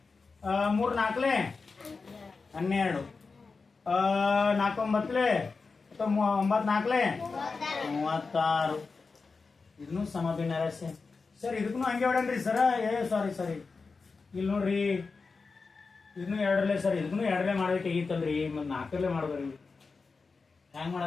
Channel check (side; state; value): right; quieter; 4.4 dB